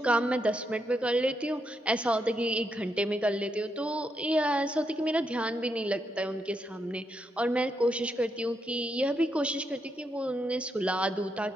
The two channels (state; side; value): normal; both; correlation 0.81